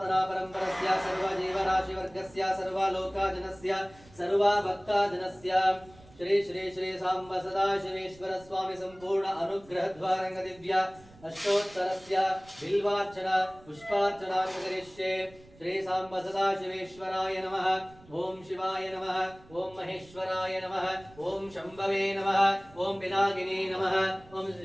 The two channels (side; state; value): right; noise; rumble, 24 dB below the sound